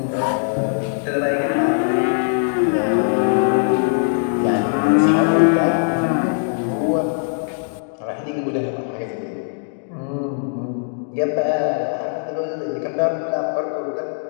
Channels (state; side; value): silent; right; digital silence